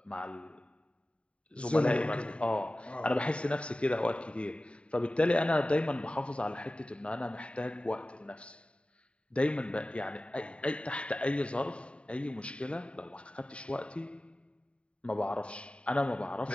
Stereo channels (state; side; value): late; right; 0.059 ms